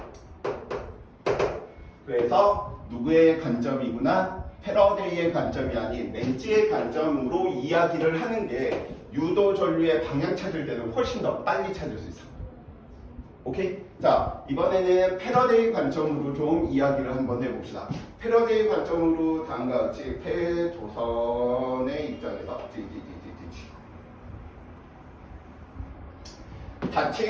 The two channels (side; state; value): both; identical; correlation 1.00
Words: 그래서 누구의 관점이구나? 패러데이의 관점이 아닌 렌즈의 관점으로 이야기를 하는 게 유도 전류의 방향 찾을 때는 훨씬 더 빨리 찾을 수 있어. 오케이? 자, 이번에는 패러데이 관점으로 좀 이야기를 한번 해봅시다. 패러데이 관점으로 다음과 같이 폐도선의 입장에서